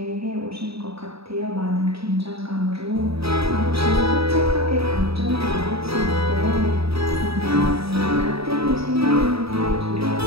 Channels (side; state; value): left; late; 0.77 ms